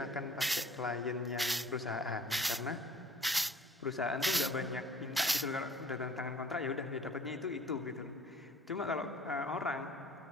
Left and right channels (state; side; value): normal; both; correlation 0.51